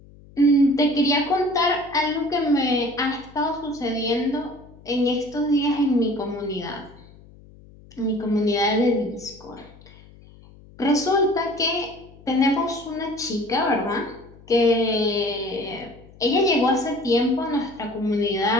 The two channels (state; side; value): noise; left; hum, 23 dB below the sound